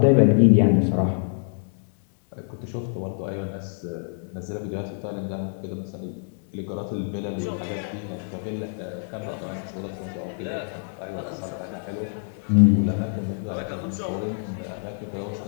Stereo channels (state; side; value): silent; right; 61 dB below the other